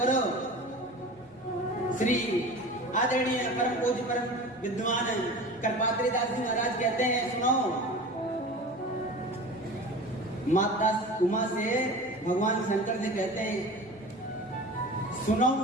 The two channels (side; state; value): both; normal; correlation 0.35